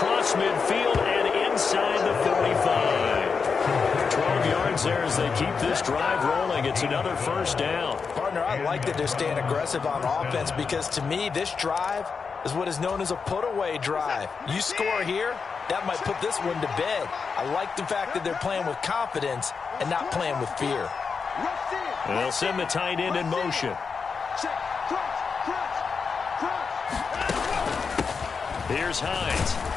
midfield and inside the 45. 12 yards there as they keep this drive rolling. It's another first down. Partner, I like that they're staying aggressive on offense, because to me, this drive is what is known as a put-away drive. You score here, that might put this one to bed. I like the fact that they're playing with confidence and not playing with fear. And they'll send the tight end in motion. Here's Hines.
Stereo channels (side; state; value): right; quieter; 5.4 dB